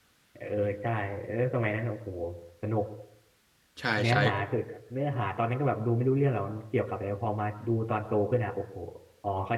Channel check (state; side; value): identical; both; correlation 1.00